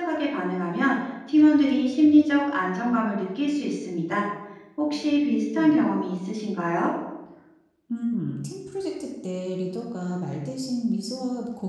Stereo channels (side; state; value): both; identical; correlation 1.00